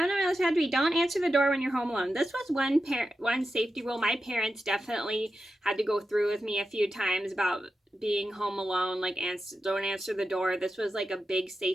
on my list had to be don't answer the door when you're home alone. This was one safety rule my parents definitely had to go through with me a few times about being home alone, like don't answer the door. This was like a big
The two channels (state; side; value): normal; both; correlation 0.90